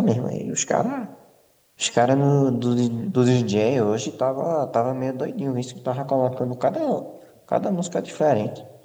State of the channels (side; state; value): both; identical; correlation 1.00